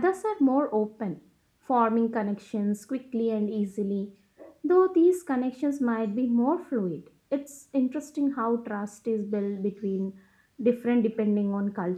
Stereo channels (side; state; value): both; identical; correlation 1.00